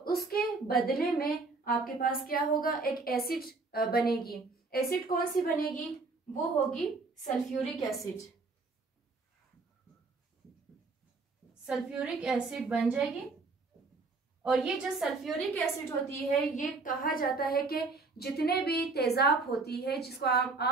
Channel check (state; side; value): quieter; left; 3.9 dB